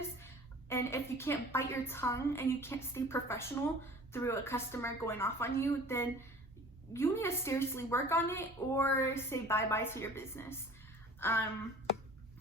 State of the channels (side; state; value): both; normal; correlation 0.45